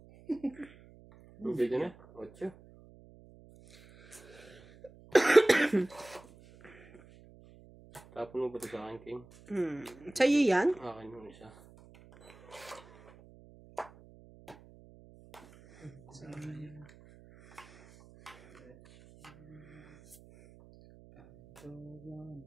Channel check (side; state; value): right; noise; hum, 23 dB below the sound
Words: Bigyan na. 8. Tapon mo ba ito sa akin, King? Sa'yo yan? Akin yung isa. Sayang.